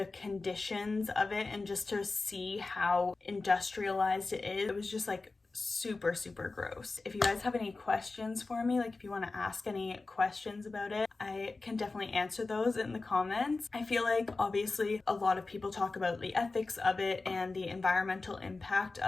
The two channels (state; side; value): quieter; right; 3.6 dB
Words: conditions of it, and just to see how industrialized it is. It was just like super, super gross. If you guys have any questions for me, like if you want to ask any questions about it, I can definitely answer those in the comments. I feel like obviously a lot of people talk about the ethics of it and the environmental impact